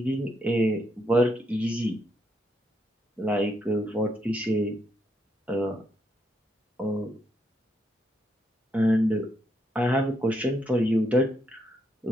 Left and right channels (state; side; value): normal; both; correlation 0.78